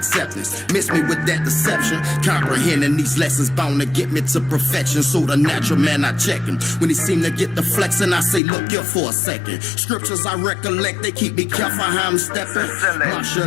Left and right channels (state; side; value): drops out; right; at 8.4 s